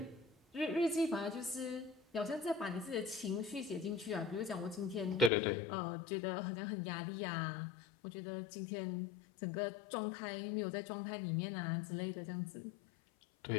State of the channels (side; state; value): right; drops out; at 5.3 s